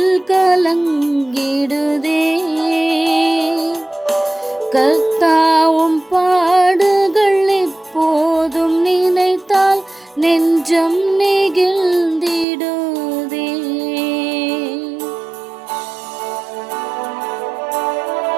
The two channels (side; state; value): left; drops out; at 12.5 s